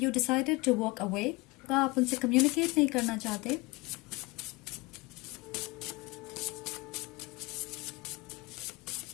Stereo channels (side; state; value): right; quieter; 23.8 dB